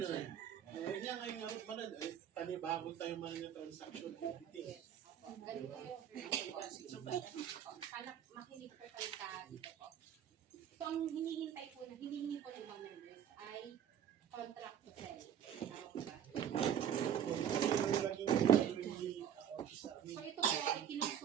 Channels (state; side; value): quieter; left; 9.3 dB